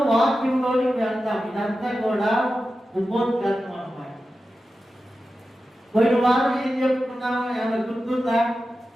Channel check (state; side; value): normal; both; correlation 0.92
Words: వాక్యంలోకి వెళ్తాం. ఇదంతా కూడా ఉపోద్ఘాతం అన్నమాట. పోయిన వారం ఏం చెప్పుకున్నాము? ఏమైనా గుర్తుందా?